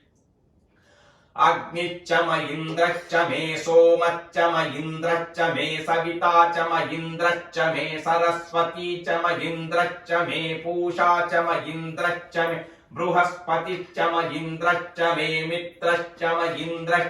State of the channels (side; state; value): both; identical; correlation 1.00